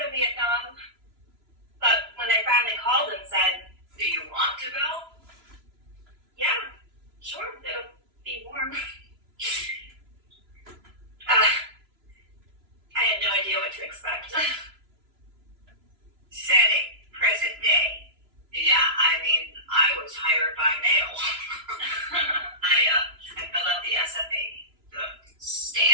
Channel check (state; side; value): late; left; 3.0 ms